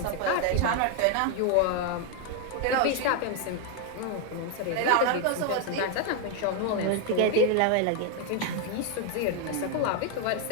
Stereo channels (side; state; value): both; different; correlation 0.01